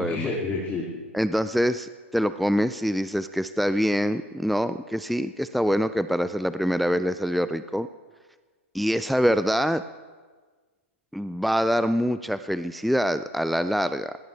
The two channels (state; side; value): normal; both; correlation 0.91